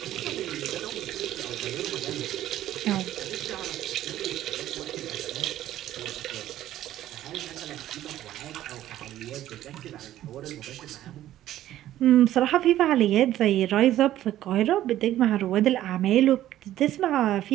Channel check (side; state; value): left; quieter; 13.2 dB